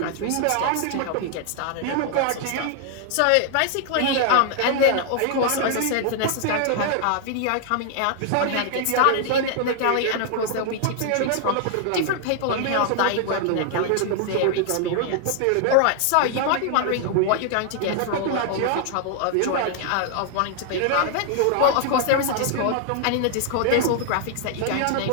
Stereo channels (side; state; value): both; different; correlation 0.00